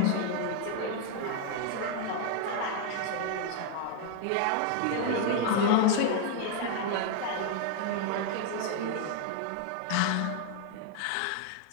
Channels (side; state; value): both; different; correlation 0.00